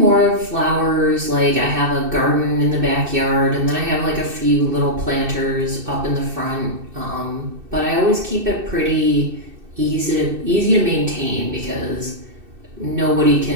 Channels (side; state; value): left; late; 2.6 ms